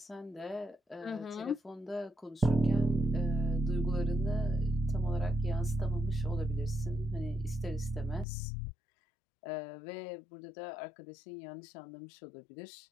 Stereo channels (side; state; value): right; drops out; at 8.2 s